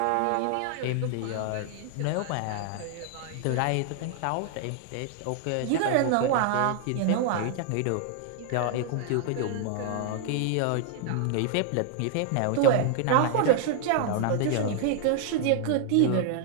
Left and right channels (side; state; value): both; different; correlation -0.01